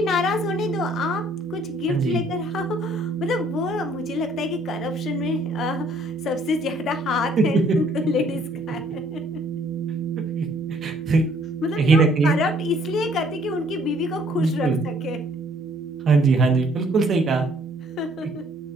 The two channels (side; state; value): both; normal; correlation 0.62